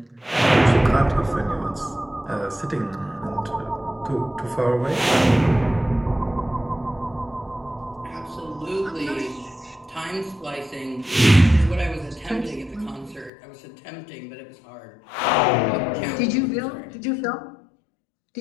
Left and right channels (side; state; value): right; drops out; at 13.3 s